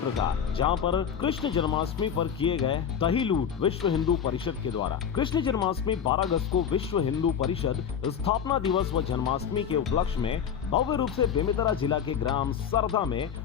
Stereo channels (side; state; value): right; quieter; 8.0 dB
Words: का, जहां पर कृष्ण जन्माष्टमी पर किए गए दही लूट विश्व हिंदू परिषद के द्वारा। कृष्ण जन्माष्टमी 12 अगस्त को विश्व हिंदू परिषद स्थापना दिवस व जन्माष्टमी के उपलक्ष्य में भव्य रूप से बेमेतरा जिला के ग्राम सरदा में